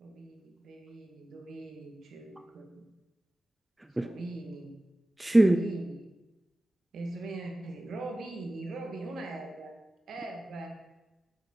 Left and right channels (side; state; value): both; normal; correlation 0.96